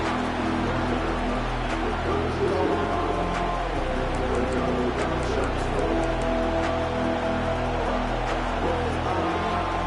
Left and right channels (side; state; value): both; identical; correlation 1.00